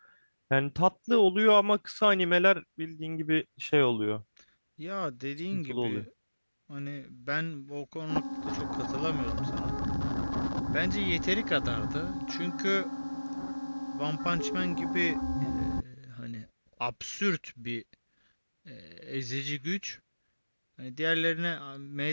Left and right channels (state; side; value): inverted; both; correlation -1.00